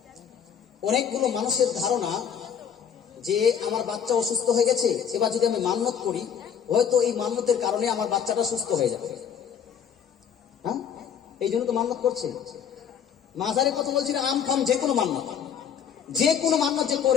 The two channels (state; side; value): quieter; right; 8.0 dB